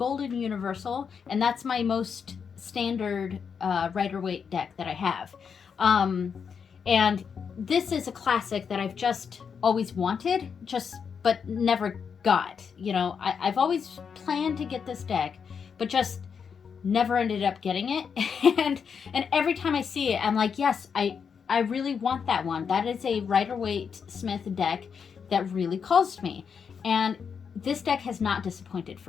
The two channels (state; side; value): quieter; right; 6.5 dB